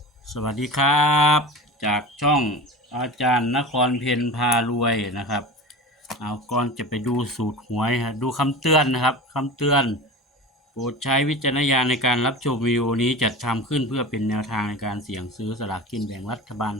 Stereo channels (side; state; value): both; normal; correlation 0.31